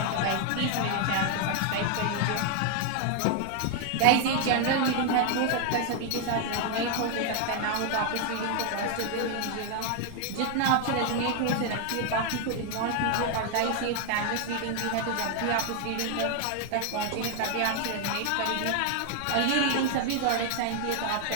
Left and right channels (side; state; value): both; different; correlation 0.00